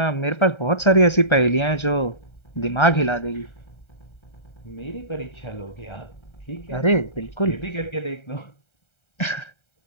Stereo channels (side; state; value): right; late; 1.3 ms